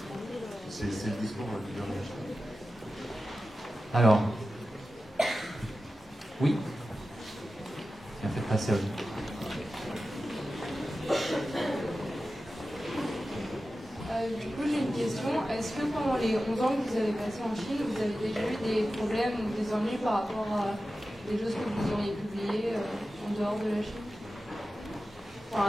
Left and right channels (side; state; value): both; normal; correlation 0.93